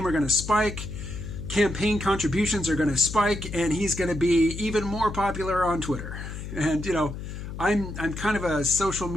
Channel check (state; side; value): noise; left; hum, 8 dB below the sound